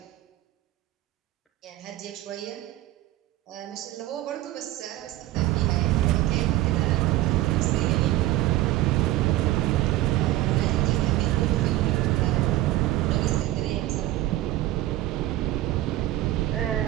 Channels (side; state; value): left; quieter; 15.8 dB